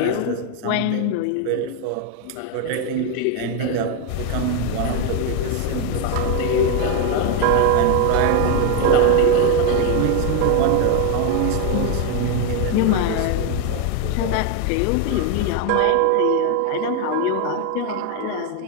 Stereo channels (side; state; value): both; different; correlation 0.01